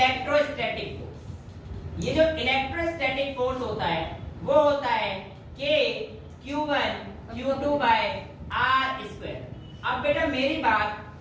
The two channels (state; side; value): identical; both; correlation 1.00